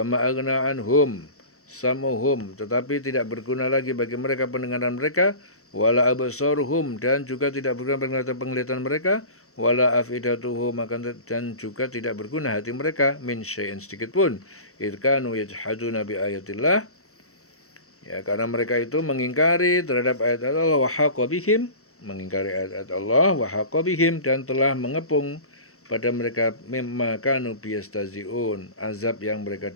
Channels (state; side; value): late; right; 0.64 ms